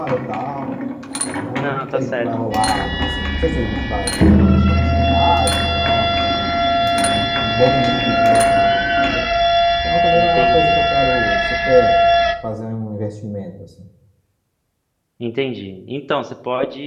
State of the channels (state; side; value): identical; both; correlation 1.00